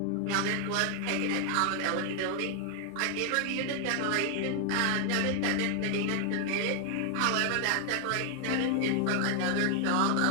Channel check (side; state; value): both; different; correlation 0.00